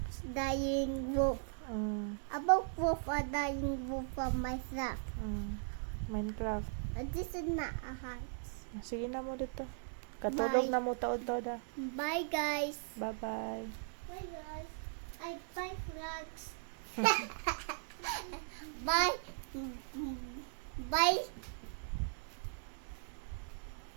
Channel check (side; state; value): left; silent; digital silence